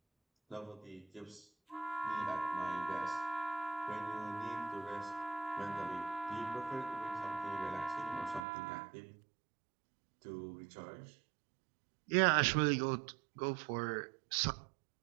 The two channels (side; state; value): left; drops out; at 8.5 s